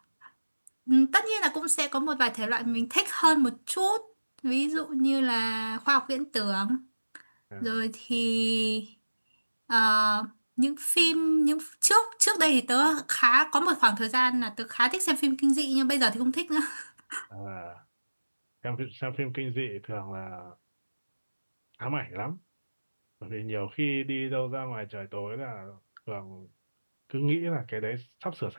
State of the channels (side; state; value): both; inverted; correlation -1.00